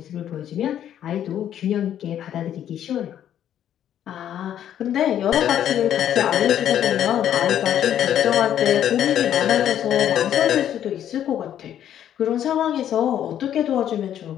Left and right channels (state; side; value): quieter; right; 10.5 dB